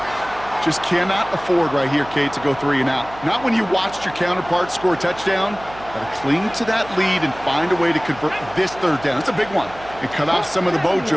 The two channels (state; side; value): noise; right; hum, 18 dB below the sound